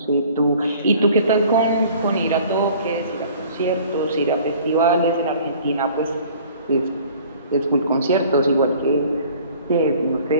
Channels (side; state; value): both; inverted; correlation -0.50